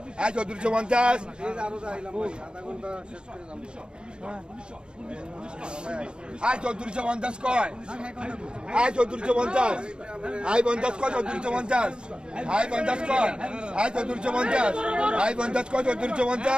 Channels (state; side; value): late; left; 0.051 ms